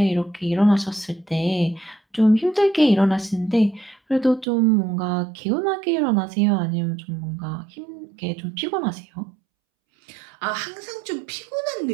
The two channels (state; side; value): drops out; left; at 4.5 s